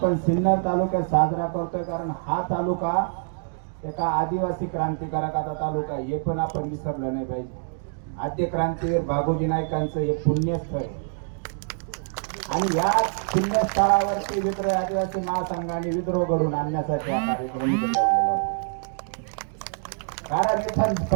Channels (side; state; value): left; silent; digital silence